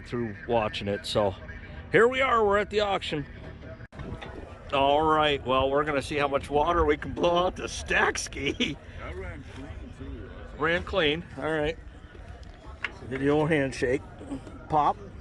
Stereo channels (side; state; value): both; identical; correlation 1.00